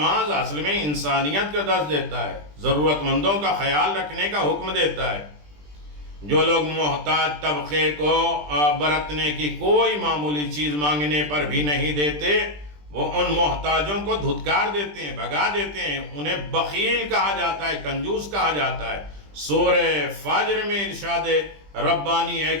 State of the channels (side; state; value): left; late; 20 ms